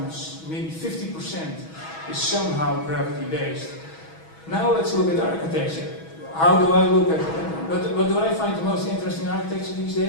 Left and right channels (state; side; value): late; right; 6.2 ms